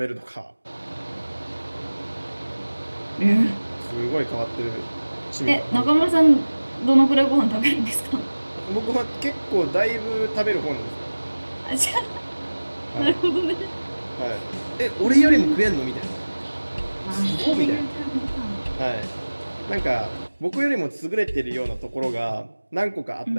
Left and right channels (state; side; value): inverted; both; correlation -1.00